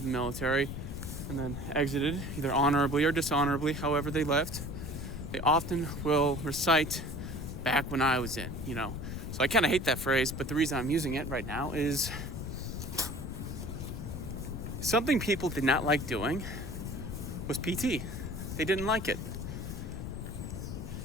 the military and then exited, either honorably or dishonorably, however they left, they often will recite back when I was in, So I kind of hate that phrase, but the reason I'm using it right now is something people did not like doing was PT. They didn't like it.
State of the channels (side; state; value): left; noise; rumble, 6 dB below the sound